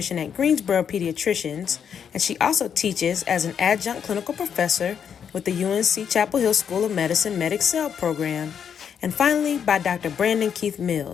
at Greensboro Pediatricians, and she also teaches as an adjunct clinical professor with the UNC Chapel Hill School of Medicine MedExcel program. And finally, by Dr. Brandon Keith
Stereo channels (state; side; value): quieter; right; 7.7 dB